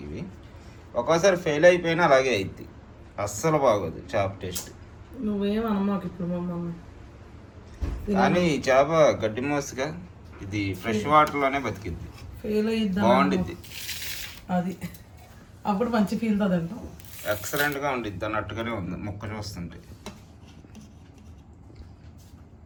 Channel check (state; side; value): identical; both; correlation 1.00